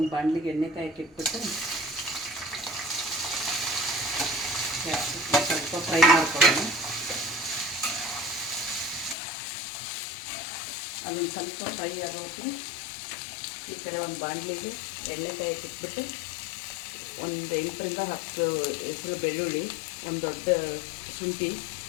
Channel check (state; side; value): drops out; right; at 9.2 s